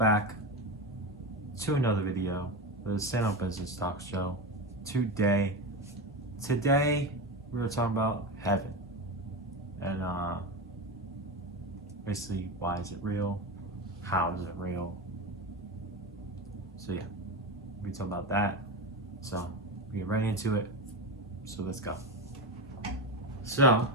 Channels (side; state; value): both; normal; correlation 0.19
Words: to another video, the Stand Up Business Talk Show. Today we're talking about heaven and basically why is it real, how is it real. So yeah, we talk about that. So we get right into it. So let's go. So